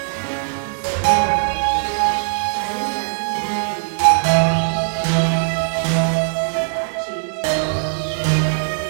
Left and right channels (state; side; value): silent; left; digital silence